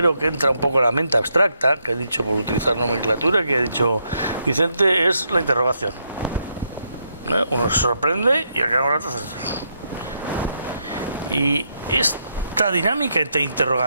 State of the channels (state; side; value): inverted; both; correlation -0.78